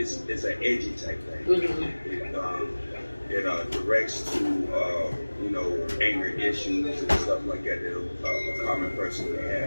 an edgy type thing. It directs to anger issues and stuff like that a common person may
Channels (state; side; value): inverted; both; correlation -1.00